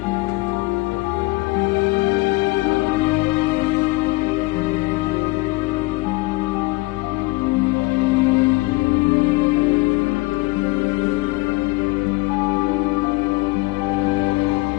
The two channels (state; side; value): quieter; right; 22.7 dB